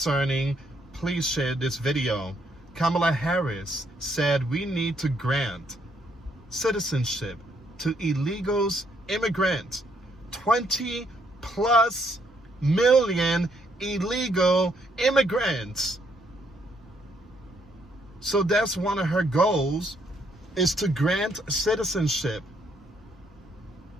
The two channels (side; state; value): both; normal; correlation 0.71